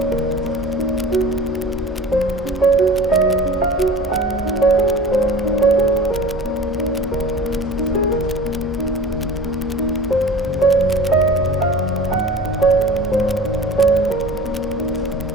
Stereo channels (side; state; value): both; normal; correlation 0.40